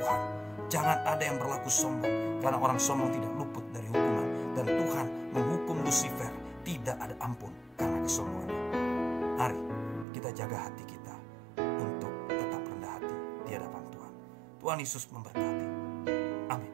Jangan ada yang berlaku sombong, karena orang sombong tidak luput dari hukuman. Dan Tuhan menghukum Lucifer, tidak ada ampun karena kesombongannya. Mari kita jaga hati kita untuk tetap rendah hati di hadapan Tuhan. Tuhan Yesus memberkati.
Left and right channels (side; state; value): left; drops out; at 10.1 s